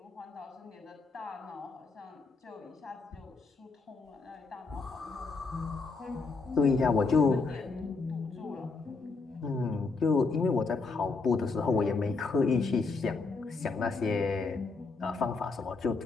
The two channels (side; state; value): right; quieter; 4.1 dB